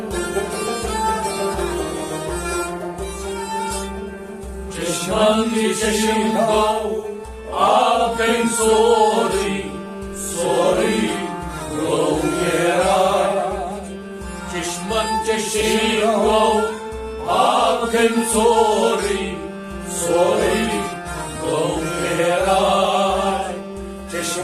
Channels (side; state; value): both; identical; correlation 1.00